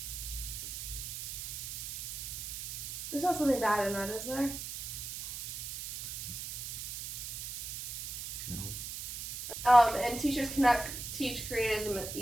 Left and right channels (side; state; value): right; noise; hiss, 6 dB below the sound